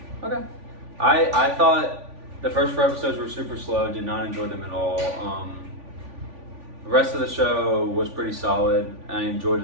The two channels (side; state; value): left; late; 3.5 ms